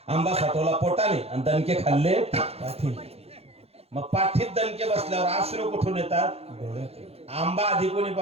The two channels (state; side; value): late; left; 0.29 ms